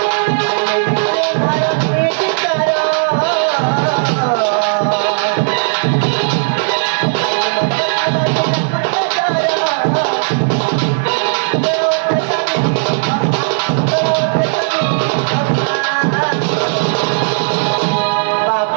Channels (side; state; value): left; silent; digital silence